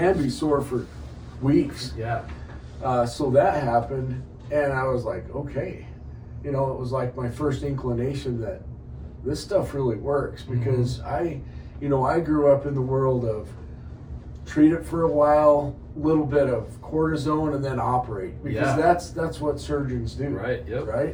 be sore for weeks. Yeah. So that happened, and I was like, okay. It was like my first inclination that this stuff really works, because I grew up in the world of treat it for a while, little bit of cortisone, and then operate, because that's what surgeons do. Right. Yep.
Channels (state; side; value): identical; both; correlation 1.00